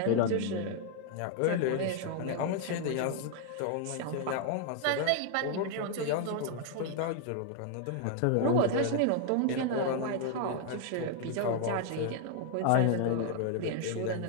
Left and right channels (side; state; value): both; different; correlation 0.00